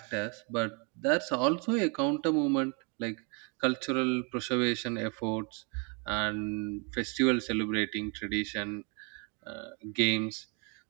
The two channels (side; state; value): left; quieter; 34.4 dB